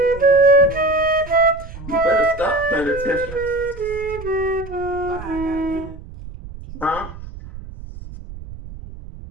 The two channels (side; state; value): right; noise; rumble, 14 dB below the sound